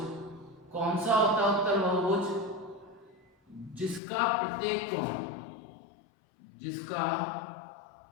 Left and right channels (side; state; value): right; drops out; at 4.0 s